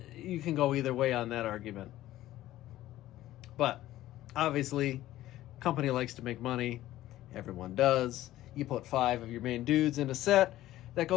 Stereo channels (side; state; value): right; quieter; 14.7 dB